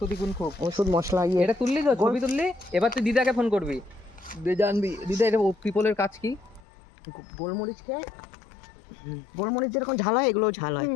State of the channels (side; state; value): right; drops out; at 6.6 s